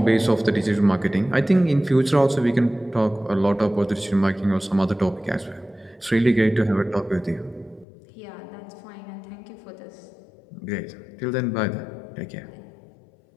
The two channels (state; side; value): drops out; right; at 7.9 s